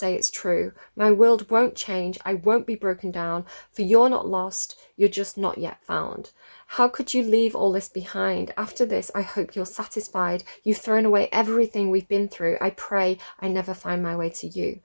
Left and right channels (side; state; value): both; inverted; correlation -1.00